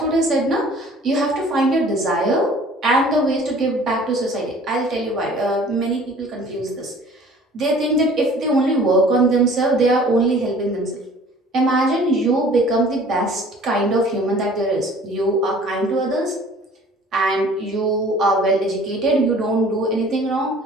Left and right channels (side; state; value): both; normal; correlation 0.50